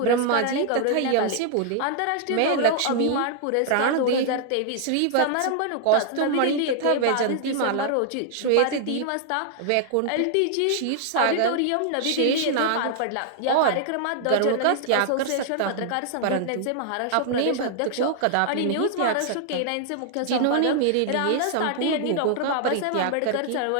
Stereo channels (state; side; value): different; both; correlation 0.00